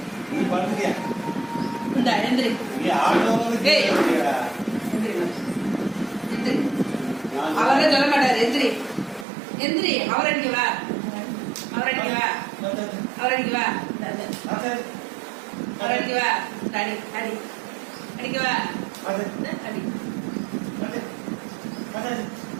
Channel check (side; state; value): left; drops out; at 9.2 s